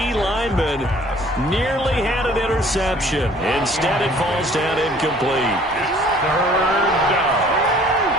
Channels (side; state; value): both; normal; correlation 0.54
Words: lineman nearly had an interception. Instead, it falls down incomplete. Third down